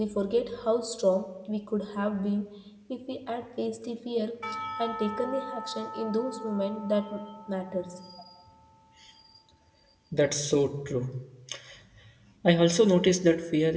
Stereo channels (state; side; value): identical; both; correlation 1.00